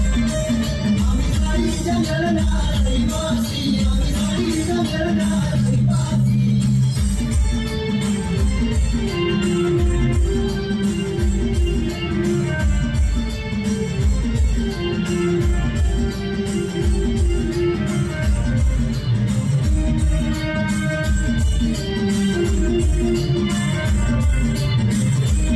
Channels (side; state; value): both; identical; correlation 1.00